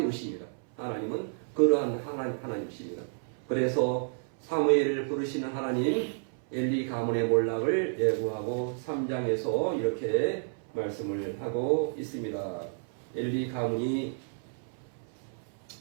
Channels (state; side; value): silent; left; 57 dB below the other